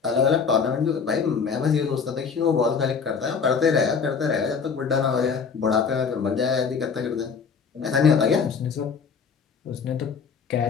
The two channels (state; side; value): quieter; right; 5.9 dB